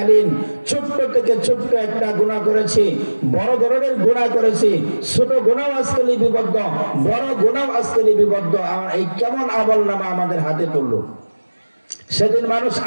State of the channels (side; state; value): both; inverted; correlation -1.00